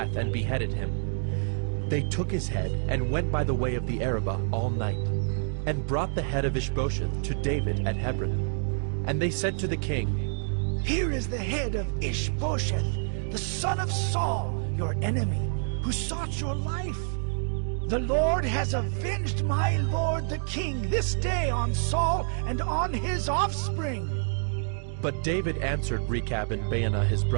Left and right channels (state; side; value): silent; left; digital silence